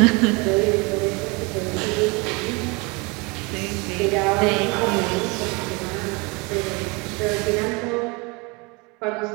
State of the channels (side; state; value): left; quieter; 28.4 dB